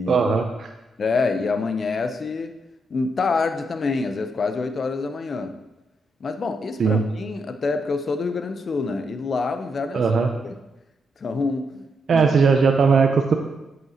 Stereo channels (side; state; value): both; normal; correlation 0.80